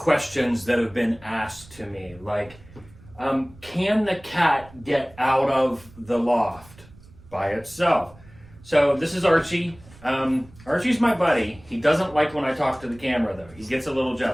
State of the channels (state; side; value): noise; right; rumble, 23 dB below the sound